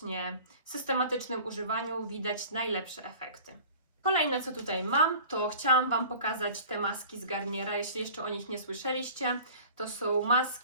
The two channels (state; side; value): inverted; both; correlation -0.43